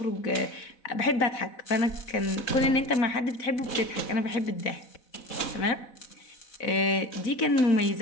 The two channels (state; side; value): late; right; 4.0 ms